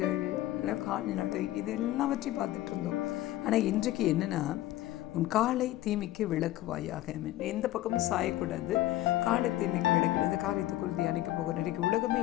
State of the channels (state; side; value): quieter; right; 15.1 dB